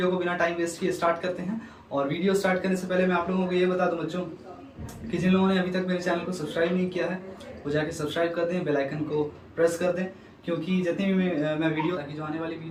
को बिना टाइम वेस्ट किए स्टार्ट करते हैं। और वीडियो स्टार्ट करने से पहले मैं आप लोगों को ये बता दूं बच्चों कि जिन लोगों ने अभी तक मेरे चैनल को सब्सक्राइब नहीं किया है वो जाके सब्सक्राइब कर दें, बेल आइकन को प्रेस कर दें, क्योंकि जितनी भी मैं वीडियो ताकि जो आने वाली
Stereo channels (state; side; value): identical; both; correlation 1.00